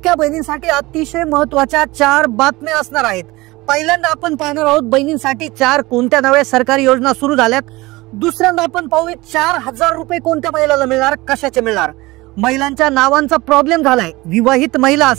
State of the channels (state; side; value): quieter; left; 21.0 dB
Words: बहिणींसाठी अतिशय महत्त्वाच्या 4 बातम्या असणार आहेत। पहिल्यांदा आपण पाहणार आहोत बहिणींसाठी 4 कोणत्या नव्या सरकारी योजना सुरू झाल्यात। दुसऱ्यांदा आपण पाहूया 4000 रुपये कोणत्या महिलाला मिळणार, कशाचे मिळणार। महिलांच्या नावांचा प्रॉब्लेम झालाय। विवाहित महिला